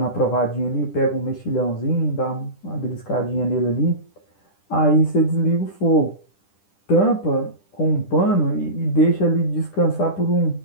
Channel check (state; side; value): late; right; 10 ms